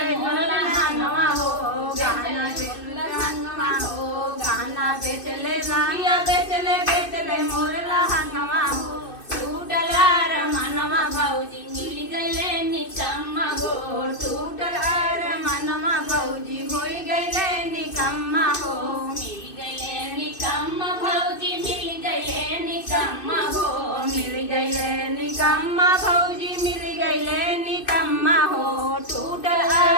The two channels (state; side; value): late; right; 2.5 ms